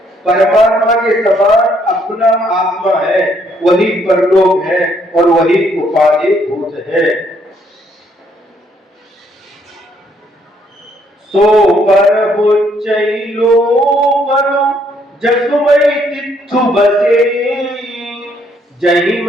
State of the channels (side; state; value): both; normal; correlation 0.69